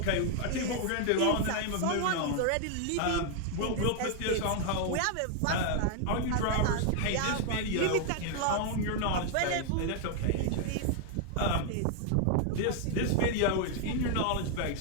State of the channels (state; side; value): different; both; correlation 0.00